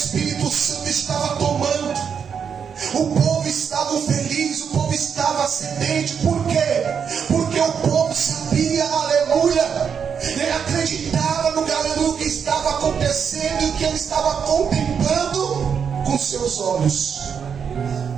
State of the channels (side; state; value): left; quieter; 7.0 dB